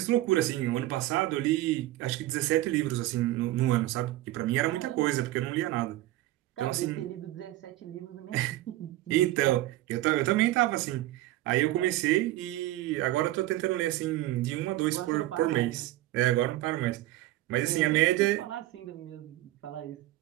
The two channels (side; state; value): left; quieter; 16.0 dB